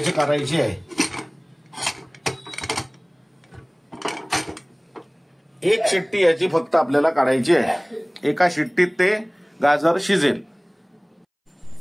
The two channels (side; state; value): both; identical; correlation 1.00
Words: करायची आहे. एक शिट्टी याची फक्त आपल्याला काढायची आहे. एका शिट्टीत ते गाजर शिजेल.